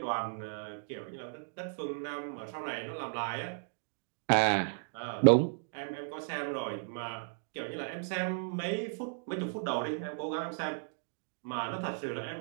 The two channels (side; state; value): left; silent; digital silence